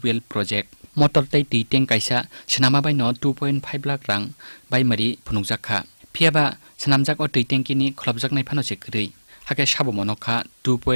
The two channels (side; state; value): both; inverted; correlation -1.00